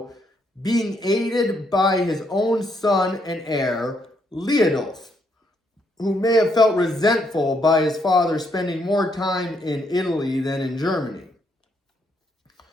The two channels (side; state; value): both; normal; correlation 0.74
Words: being aided by his own son and heir, Leodulf, who may have felt resentful by his father spending more time in Italy than in Germany.